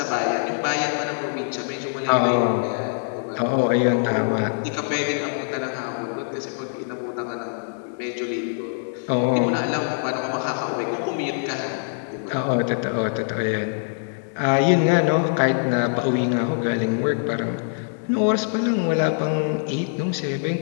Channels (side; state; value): right; silent; digital silence